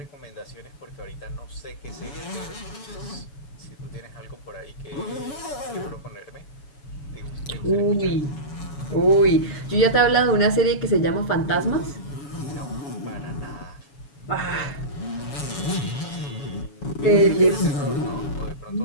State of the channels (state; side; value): late; right; 7.0 ms